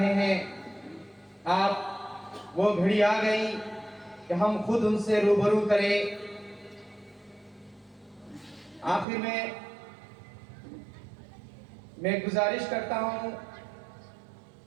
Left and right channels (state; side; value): drops out; left; at 9.1 s